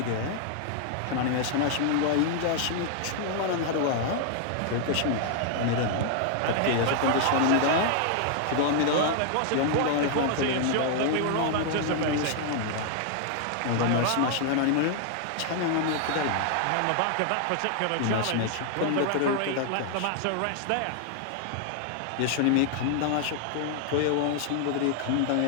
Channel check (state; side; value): different; both; correlation 0.00